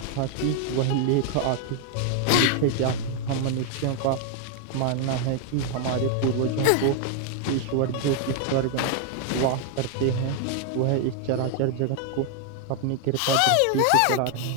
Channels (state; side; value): different; both; correlation 0.00